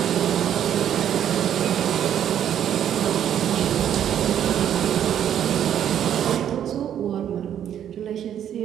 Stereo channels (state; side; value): quieter; left; 9.9 dB